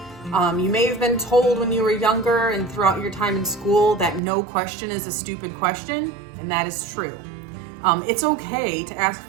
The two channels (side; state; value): left; drops out; at 4.2 s